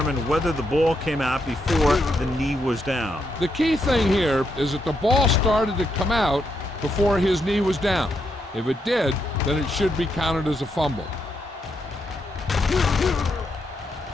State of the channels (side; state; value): both; normal; correlation 0.80